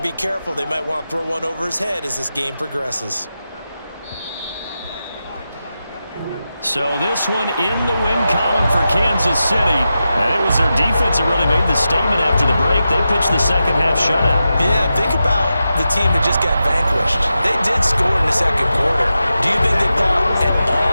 careful. They might want to throw one over his head as this game progresses. So this one in the win column for Kansas City. And it was their defense that really made the statement after the break. They pitched the second-half shutout. Yeah, think about the team that just got vanquished. They did score in the second quarter. Do you think they thought at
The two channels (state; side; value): inverted; both; correlation -0.90